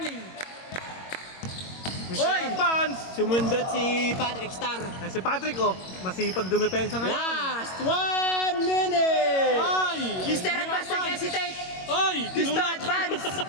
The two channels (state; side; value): late; right; 22 ms